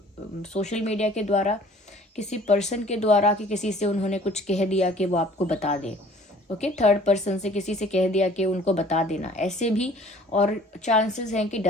सोशल मीडिया के द्वारा, किसी पर्सन के द्वारा कि किसी से उन्होंने कुछ कह दिया कि वो आपको बता दे। ओके, थर्ड पर्सन से किसी से कह दिया कि उनको बता देना, ऐसे भी। और चांसेस हैं कि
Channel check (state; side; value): normal; both; correlation 0.52